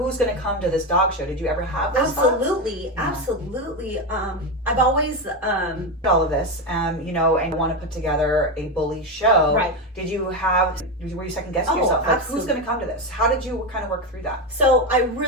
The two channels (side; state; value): both; normal; correlation 0.13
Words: going to come to this dog show? Did you ever have those Absolutely. thoughts? Absolutely. I've always All of this, and want to put together a bully show. Right. Were you second guessing yourself? Like, who's going to come to this? How did you kind of work through that? So I